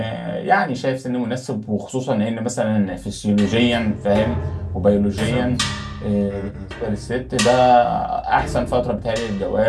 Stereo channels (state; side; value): identical; both; correlation 1.00